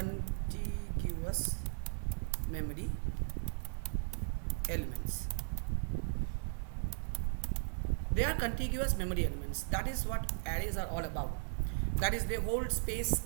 memory elements. They are contiguous memory elements. That is what arrays are all about. That is, they hold space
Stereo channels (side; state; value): left; silent; digital silence